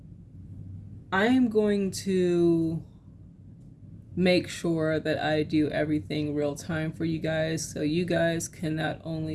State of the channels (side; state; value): both; identical; correlation 1.00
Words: I am going to make sure that I do everything real time for you guys, so you guys can not